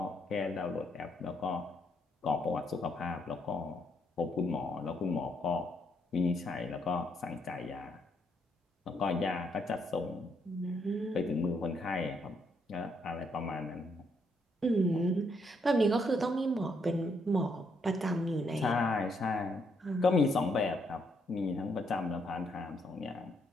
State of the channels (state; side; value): normal; both; correlation 0.74